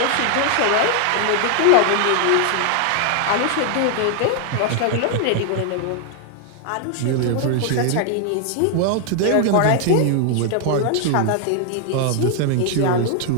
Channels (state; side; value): different; both; correlation 0.00